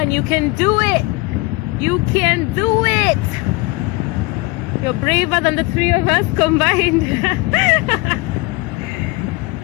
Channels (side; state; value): right; quieter; 23.2 dB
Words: you can do it! You can do it! You're braver than the three of us combined.